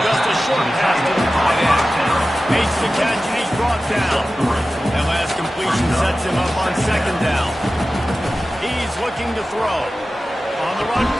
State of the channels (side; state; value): both; normal; correlation 0.95